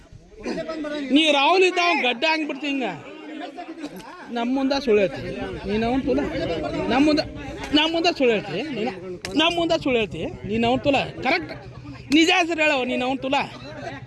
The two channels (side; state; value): both; identical; correlation 1.00